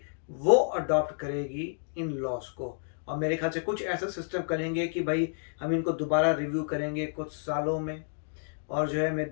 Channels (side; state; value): right; silent; digital silence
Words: वो अडॉप्ट करेगी इन लॉस को। और मेरे ख्याल से कुछ ऐसा सिस्टम करेंगे कि भाई हम इनको दोबारा रिव्यू करेंगे कुछ सालों में, और जो है मैं